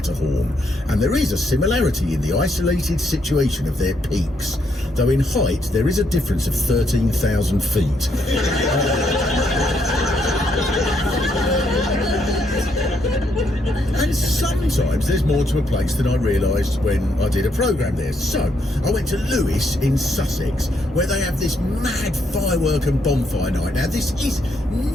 and there is a similarity in the isolated situation of their peaks, though in height there is a difference of 13,000 feet. And sometimes there's more to a place than I realised when I did a programme there. So, I went to Lewes in Sussex, where they have this mad firework and bonfire night. Now, this is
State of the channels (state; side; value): normal; both; correlation 0.75